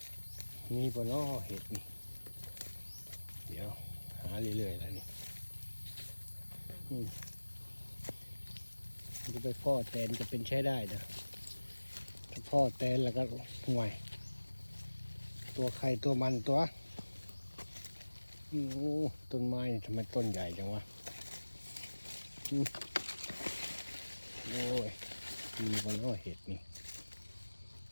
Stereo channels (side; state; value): both; inverted; correlation -1.00